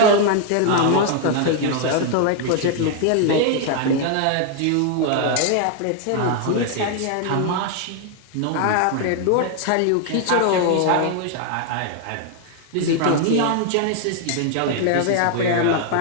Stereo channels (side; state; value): both; different; correlation 0.00